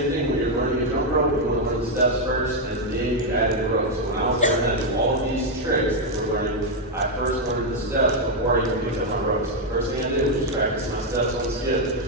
thing when you're learning a jump rope, you want to learn the steps first and then you add in the ropes. When I was learning how to do all of these tricks that we're learning, I first learned the steps before I even picked up my ropes. The first thing I did was just practice my steps on the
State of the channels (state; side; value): normal; both; correlation 0.01